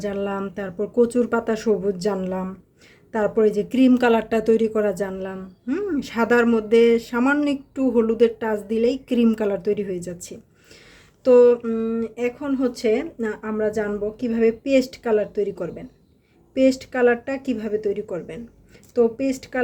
জানলাম, তারপর কচুর পাতা সবুজ জানলাম, তারপরে যে ক্রিম কালারটা তৈরি করা জানলাম। সাদার মধ্যে সামান্য একটু হলুদের টাচ দিলেই ক্রিম কালার তৈরি হয়ে যাচ্ছে। তো এখন হচ্ছে আমরা জানবো কিভাবে পেস্ট কালার তৈরি করবেন। পেস্ট কালারটা কিভাবে তৈরি করবেন? তো পেস্ট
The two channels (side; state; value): both; identical; correlation 1.00